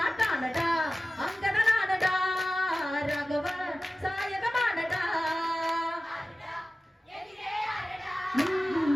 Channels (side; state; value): both; normal; correlation 0.96